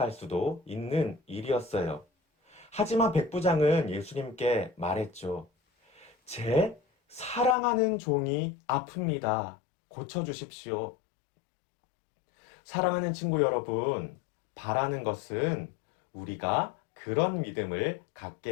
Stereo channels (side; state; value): right; drops out; at 7.6 s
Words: 수도 있는 일이었어요. 하지만 백부장은 예수님께 말했죠. 제 사랑하는 종이 아픕니다. 고쳐주십시오. 사랑하는 친구 여러분, 바라는 것은 우리가 그런 믿음을